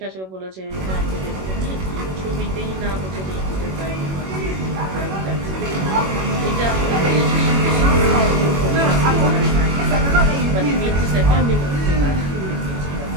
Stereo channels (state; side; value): late; left; 21 ms